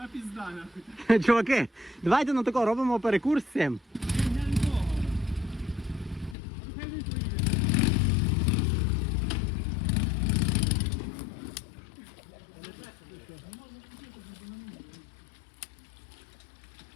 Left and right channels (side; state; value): right; drops out; at 6.4 s